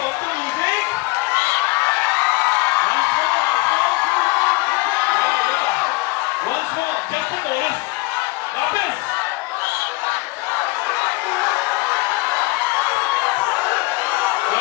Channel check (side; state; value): right; quieter; 23.8 dB